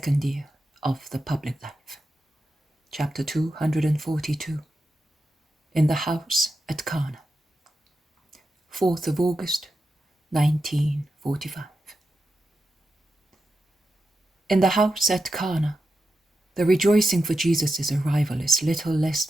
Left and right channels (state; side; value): normal; both; correlation 0.89